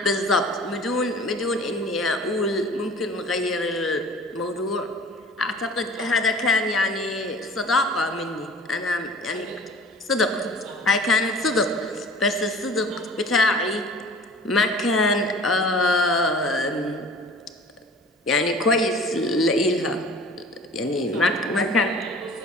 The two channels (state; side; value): normal; both; correlation 0.44